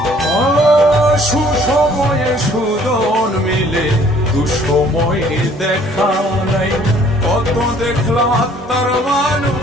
সুসময়ে সুজন মিলে, দুঃসময়ে দেখা নাই। কত দেখলাম আত্মার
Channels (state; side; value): normal; both; correlation 0.58